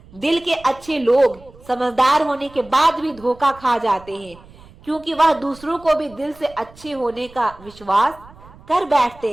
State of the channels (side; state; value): right; noise; rumble, 23 dB below the sound